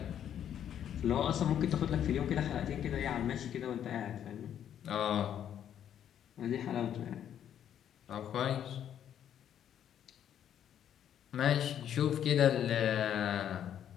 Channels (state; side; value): quieter; right; 9.8 dB